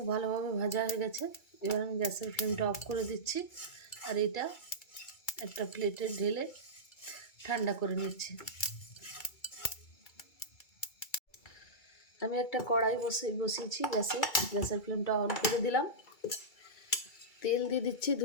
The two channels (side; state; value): right; late; 2.3 ms